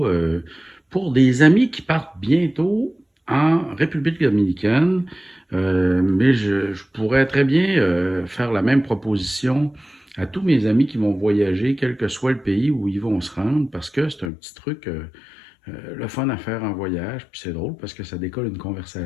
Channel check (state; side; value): drops out; right; at 14.3 s